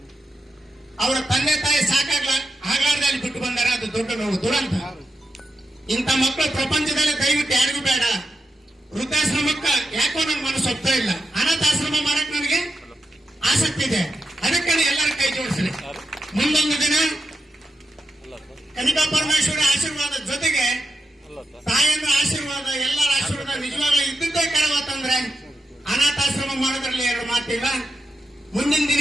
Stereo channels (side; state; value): both; normal; correlation 0.87